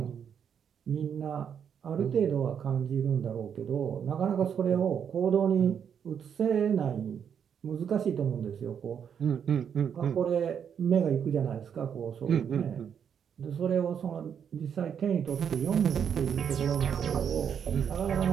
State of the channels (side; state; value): left; quieter; 7.9 dB